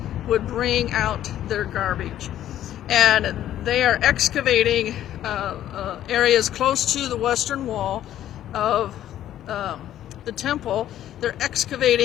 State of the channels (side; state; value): right; quieter; 12.0 dB